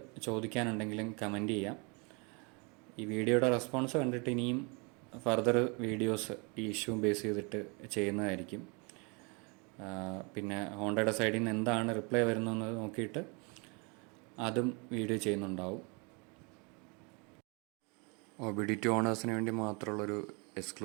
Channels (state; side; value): quieter; left; 31.8 dB